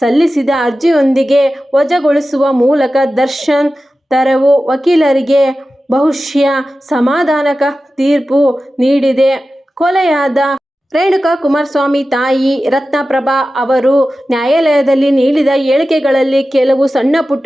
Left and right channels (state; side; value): normal; both; correlation 0.94